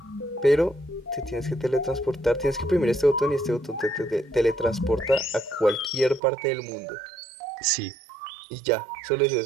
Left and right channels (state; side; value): drops out; left; at 6.2 s